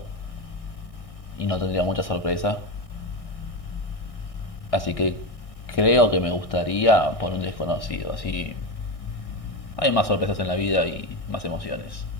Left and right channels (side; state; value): right; late; 1.6 ms